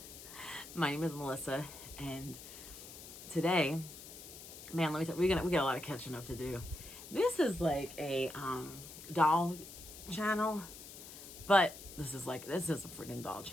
My name is Melissa, and today, man, let me tell you, we got a lot of catching up to do. This is like a doll channel, but this is a freaking doll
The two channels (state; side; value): noise; left; hiss, 14 dB below the sound